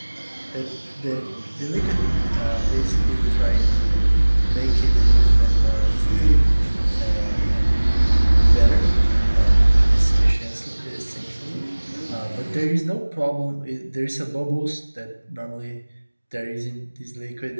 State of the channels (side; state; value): both; inverted; correlation -1.00